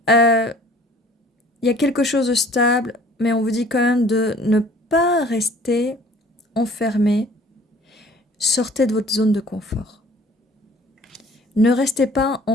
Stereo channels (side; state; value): both; normal; correlation 0.52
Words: Il y a quelque chose de stable, mais on vous dit quand même de ne pas rester enfermé. Sortez de votre zone de confort. Ne restez pas